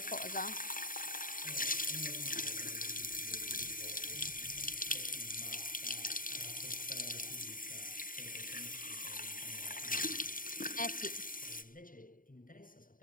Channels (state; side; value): late; right; 0.40 ms